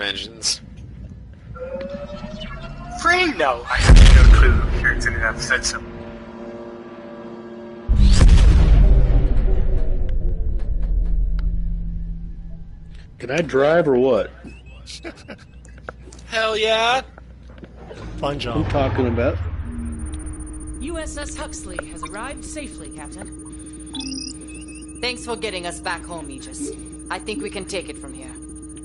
engines? Free? No, I have no clue. It's in enough said so. Can I drive or what? Hell yeah! Fine job. I'm talking about. USS Huxley has arrived safely, Captain. Thanks for getting us back home, Aegis. I think we can take it from here.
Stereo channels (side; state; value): both; identical; correlation 1.00